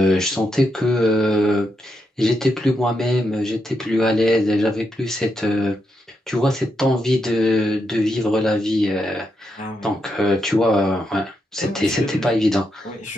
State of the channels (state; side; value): normal; both; correlation 0.83